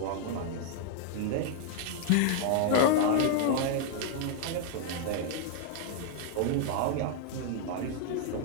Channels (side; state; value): both; different; correlation 0.00